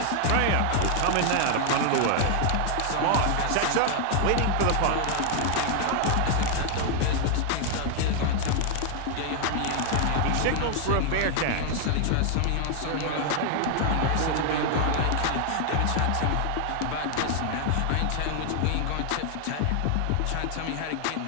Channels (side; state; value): both; different; correlation 0.00